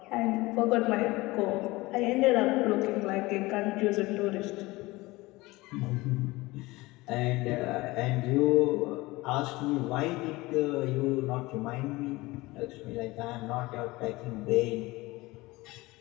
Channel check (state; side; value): quieter; right; 21.0 dB